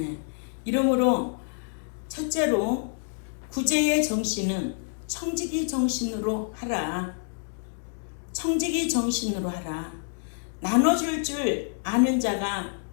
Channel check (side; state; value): right; silent; digital silence